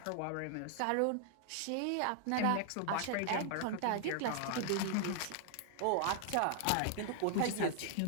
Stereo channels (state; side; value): different; both; correlation 0.00